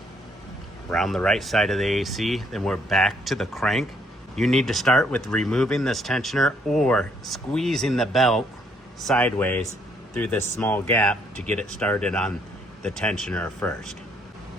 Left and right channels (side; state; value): both; normal; correlation 0.69